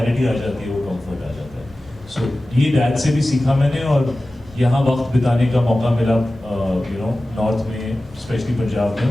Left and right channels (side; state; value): both; normal; correlation 0.96